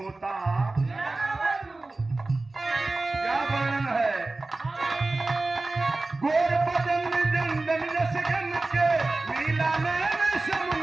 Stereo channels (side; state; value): left; quieter; 3.2 dB